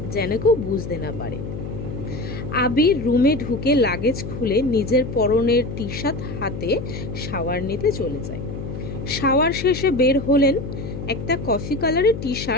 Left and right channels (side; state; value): left; noise; hum, 7 dB below the sound